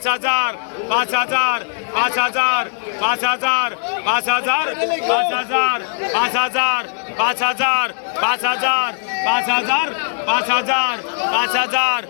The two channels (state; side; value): silent; right; digital silence